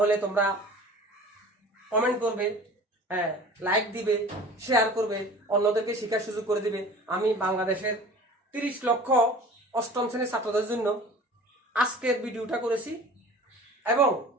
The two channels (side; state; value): both; normal; correlation 0.43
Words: তোমরা কমেন্ট করবে, হ্যাঁ, লাইক দিবে, শেয়ার করবে, অন্যদেরকে শেখার সুযোগ করে দিবে। আমি বাংলাদেশের 30 লক্ষ অষ্টম শ্রেণীর ছাত্রদের জন্য আজকের ভিডিওটা করেছি, এবং